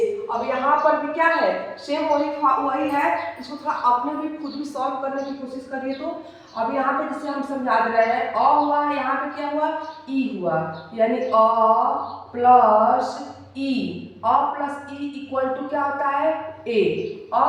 अब यहाँ पर भी क्या है, सेम वही है, इसको थोड़ा अपने भी खुद भी सॉल्व करने की कोशिश करिए। तो अब यहाँ पे जैसे हम समझा दे रहे हैं, अ हुआ, यहाँ पे क्या हुआ, ई हुआ, यानी अ प्लस ई इक्वल टू क्या होता है, ए। अ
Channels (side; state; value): both; identical; correlation 1.00